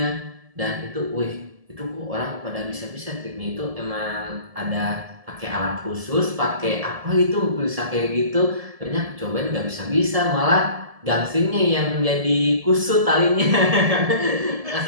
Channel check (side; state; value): left; late; 1.7 ms